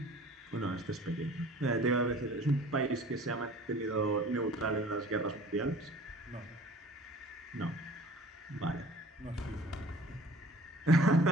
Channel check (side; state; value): both; normal; correlation 0.47